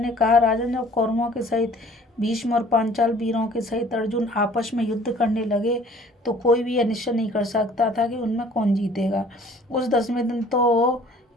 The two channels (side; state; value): both; normal; correlation 0.53